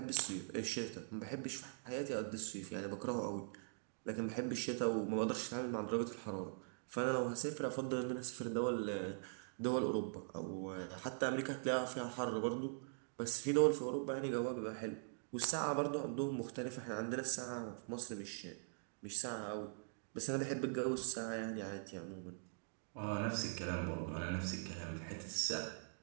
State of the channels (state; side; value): silent; left; digital silence